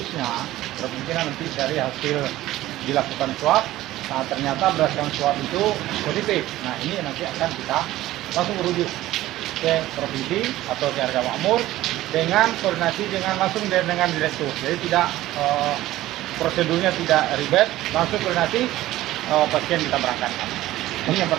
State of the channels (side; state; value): left; quieter; 15.6 dB